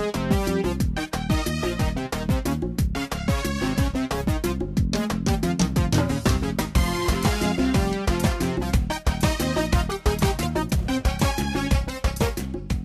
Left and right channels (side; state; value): both; identical; correlation 1.00